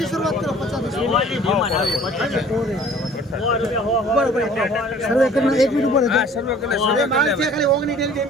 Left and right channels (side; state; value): both; normal; correlation 0.51